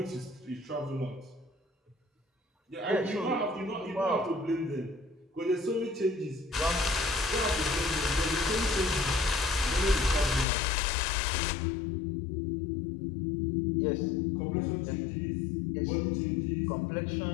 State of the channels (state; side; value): drops out; right; at 10.5 s